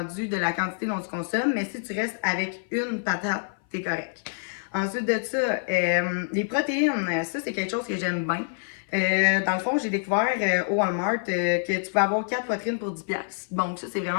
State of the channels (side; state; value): right; silent; 57 dB below the other